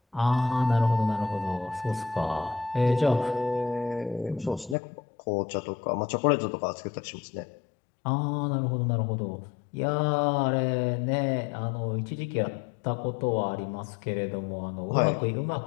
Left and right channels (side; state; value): right; drops out; at 4.8 s